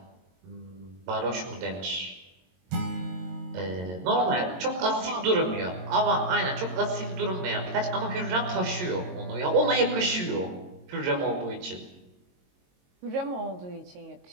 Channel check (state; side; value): late; left; 22 ms